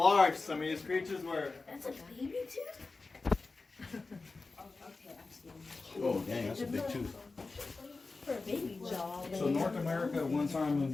some of these creatures were. That's a baby tooth? Oh, dang, that's a big tooth. For a baby jaw. So North America at one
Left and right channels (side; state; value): right; quieter; 3.8 dB